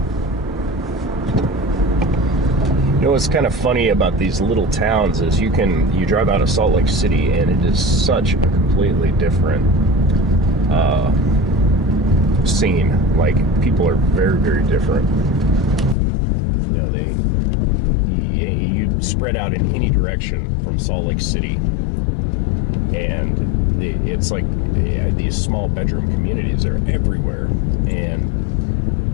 What's kind of funny about these little towns is you drive out of Salt Lake City and it is such a completely different scene. Like, people are very, very different. You spread out in any direction from Salt Lake City, and it's like these small bedroom communities are everywhere, and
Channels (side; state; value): right; drops out; at 16.0 s